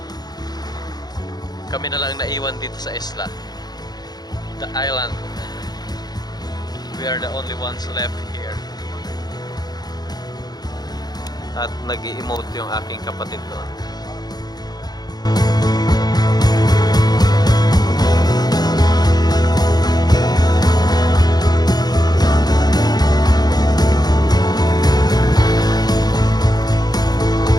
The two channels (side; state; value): right; late; 0.19 ms